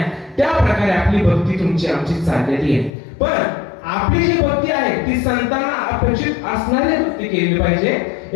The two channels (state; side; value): drops out; right; at 2.9 s